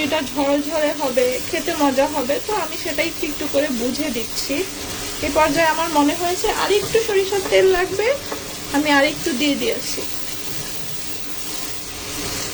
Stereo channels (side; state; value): both; identical; correlation 1.00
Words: ঝরঝরে হবে, খেতে মজা হবে। তো আমি সেটাই একটু একটু করে বুঝে দিচ্ছি। এই পর্যায়ে আমার মনে হয়েছে আর একটু সরিষার তেল লাগবে, আমি আর একটু দিয়ে দিয়েছি।